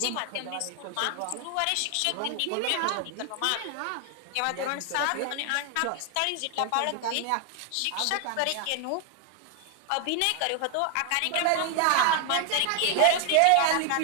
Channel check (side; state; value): both; different; correlation 0.00